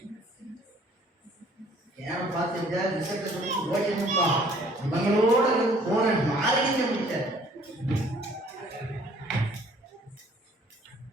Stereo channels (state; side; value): normal; both; correlation 0.57